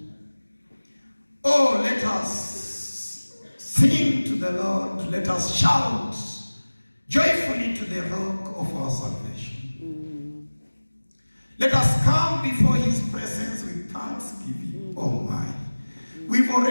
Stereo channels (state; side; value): inverted; both; correlation -1.00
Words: Oh, let us sing to the Lord. Let us shout joyfully to the rock of our salvation. Let us come before His presence with thanksgiving. Oh, my. We've